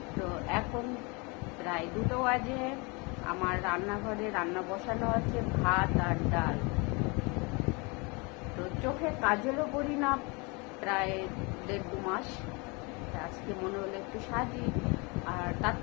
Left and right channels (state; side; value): quieter; right; 29.1 dB